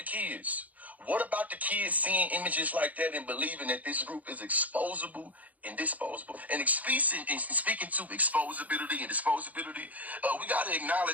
kids? What about the kids seeing images like that and believing that this group is exposable and disposable? And speaking to exposability and disposability, we got to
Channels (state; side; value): late; left; 0.077 ms